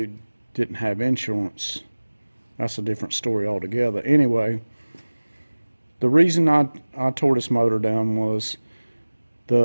didn't have insurance. That's a different story altogether. Anyway, the reason I tore this motor down was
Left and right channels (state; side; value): inverted; both; correlation -1.00